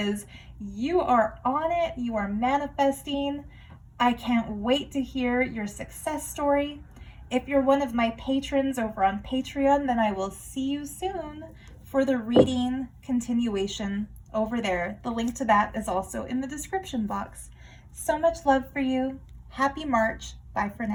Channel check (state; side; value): identical; both; correlation 1.00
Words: you are on it, you are manifesting. I can't wait to hear your success story. If you're one of my patrons over on Patreon, then I will see you soon for the reading continuation over there. The link to that is also in the description box. So much love for you. Happy March. Bye for